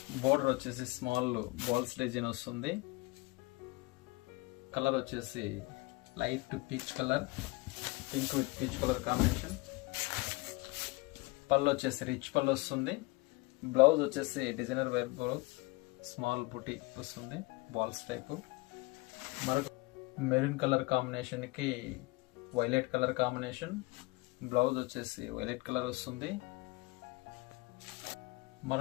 బోర్డర్ వచ్చేసి స్మాల్ బాల్స్ డిజైన్ వస్తుంది. కలర్ వచ్చేసి light peach colour, pink with peach colour combination. పళ్ళు వచ్చేసి రిచ్ పళ్ళు వస్తుంది. బ్లౌజ్ వచ్చేసి డిజైనర్ వేర్ బ్లౌజ్, స్మాల్ బుటీ వస్తుంది, బాల్స్ టైపు. మరొక మెరూన్ కలర్ కాంబినేషన్ కి వైలెట్ కలర్ కాంబినేషన్. బ్లౌజ్ వచ్చేసి వైలెట్ కలర్ వస్తుంది.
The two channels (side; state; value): right; quieter; 23.2 dB